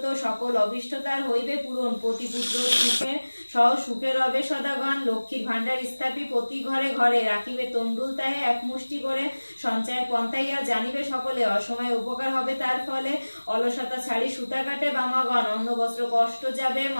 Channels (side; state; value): both; inverted; correlation -1.00